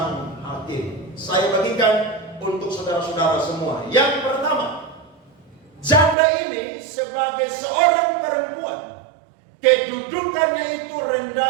hakim. Saya bagikan untuk saudara-saudara semua. Yang pertama, janda ini sebagai seorang perempuan, kedudukannya itu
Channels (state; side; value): drops out; left; at 6.2 s